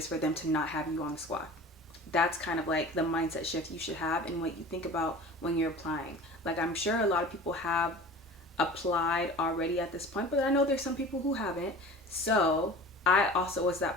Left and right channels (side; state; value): both; normal; correlation 0.39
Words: for them to not have you on the squad? That's kind of like the mindset shift you should have and what you think about when you're applying. Like, I'm sure a lot of people have applied already at this point, but I know there's some people who haven't. So I also was